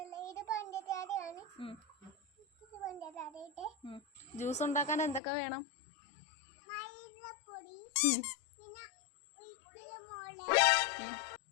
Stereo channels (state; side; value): drops out; right; at 5.2 s